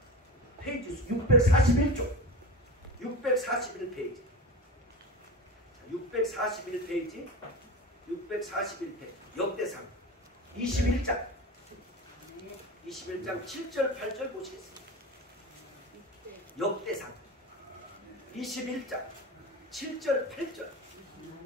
페이지 수 641쪽. 641페이지. 641페이지. 641페이지. 역대상. 21장. 21장 7절 8절 보시겠습니다. 역대상. 21장 7절 8절.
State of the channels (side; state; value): both; normal; correlation 0.28